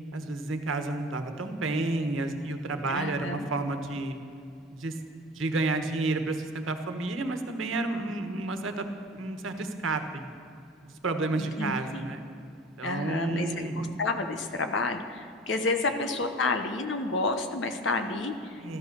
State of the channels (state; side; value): normal; both; correlation 0.40